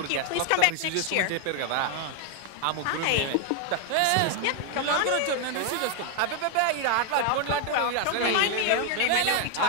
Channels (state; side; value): different; both; correlation 0.00